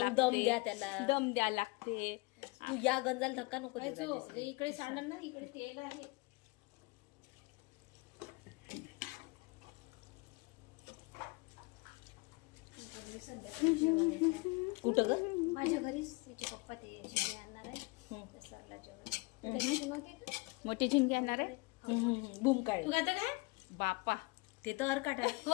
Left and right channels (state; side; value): quieter; right; 26.2 dB